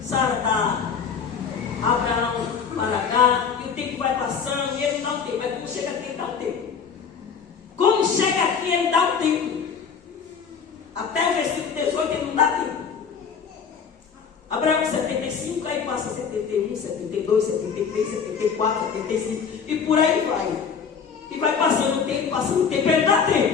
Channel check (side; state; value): right; quieter; 6.4 dB